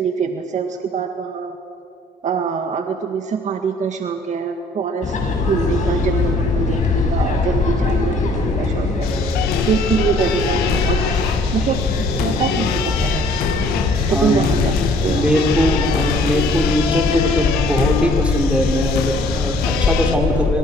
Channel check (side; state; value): both; normal; correlation 0.58